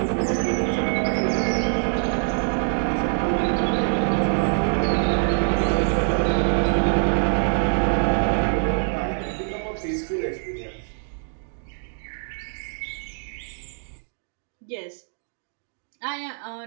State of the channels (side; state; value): left; silent; 60 dB below the other